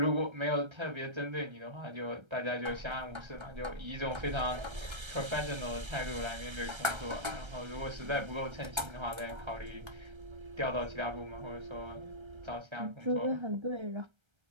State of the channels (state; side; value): late; left; 1.3 ms